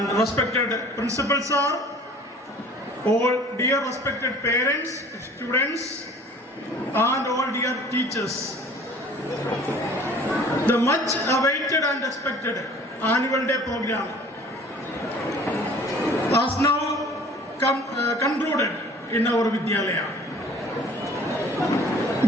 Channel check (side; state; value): both; normal; correlation 0.49